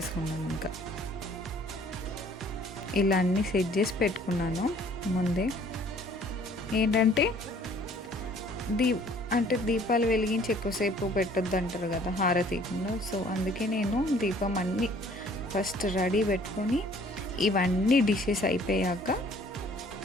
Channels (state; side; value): normal; both; correlation 0.56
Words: ఇంకా ఇలా అన్నీ సెట్ చేసి పెట్టుకున్నాను ముందే. ఏంటంటే దీపాలు వెలిగించి ఎక్కువసేపు పెట్టొద్దు అంటారు కదా హారతీయకుండా. సో అందుకే నేను దీపం అన్నీ ఫస్ట్ రెడీ పెట్టుకొని ఇవన్నీ డిషెస్ అయిపోయాక